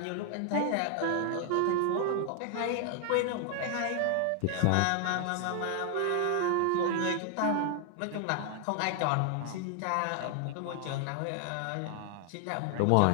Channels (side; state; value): both; different; correlation 0.00